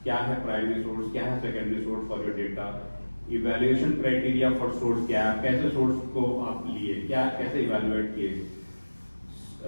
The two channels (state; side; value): inverted; both; correlation -1.00